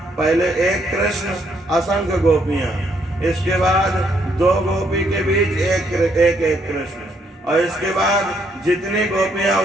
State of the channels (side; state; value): both; normal; correlation 0.72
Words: पहले एक कृष्ण असंख्य गोपियां, इसके बाद 2 गोपी के बीच एक कृष्ण, और इसके बाद जितनी गोपियां